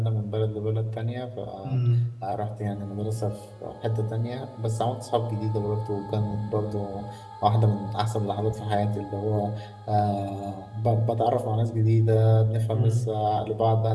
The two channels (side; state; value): both; identical; correlation 1.00